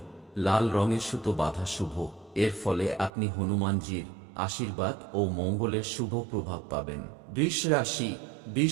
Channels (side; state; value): left; drops out; at 3.1 s